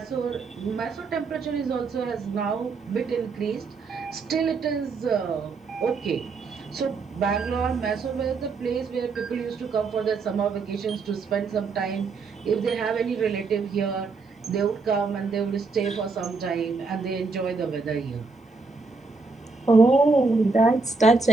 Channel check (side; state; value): left; quieter; 4.3 dB